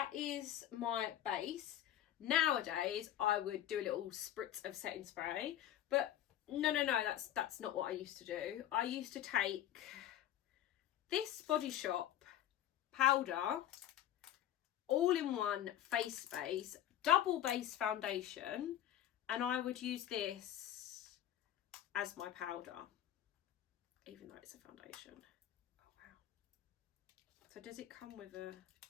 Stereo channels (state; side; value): quieter; right; 11.8 dB